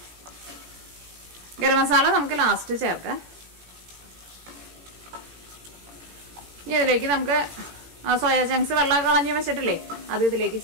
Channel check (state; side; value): late; left; 17 ms